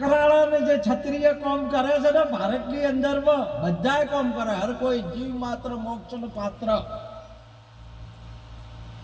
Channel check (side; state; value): both; identical; correlation 1.00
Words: જે ક્ષત્રિય કામ કરે છે ને ભારતની અંદર બધાય કામ કરે, હર કોઈ જીવ માત્ર મોક્ષનું પાત્ર,